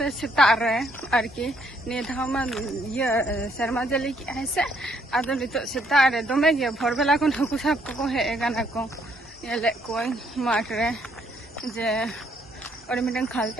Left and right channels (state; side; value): normal; both; correlation 0.69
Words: सेता रे आरकी नि धामा ये शर्मा जली की है से आदो नितो सेता रे दमे गे भोरबेला कोन हकु साब को हे गाना को येले कोई माठ रे जे और मिटन खाल